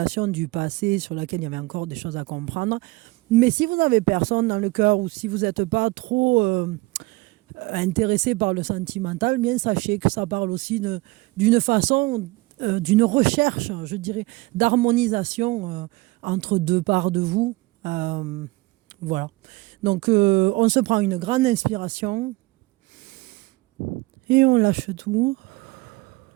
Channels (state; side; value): quieter; left; 22.2 dB